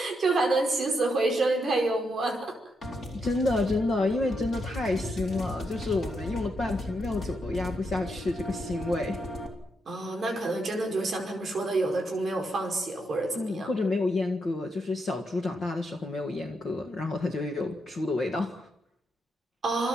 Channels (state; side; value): normal; both; correlation 0.81